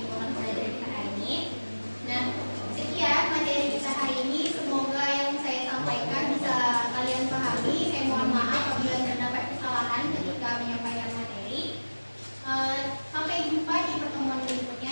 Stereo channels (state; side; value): inverted; both; correlation -1.00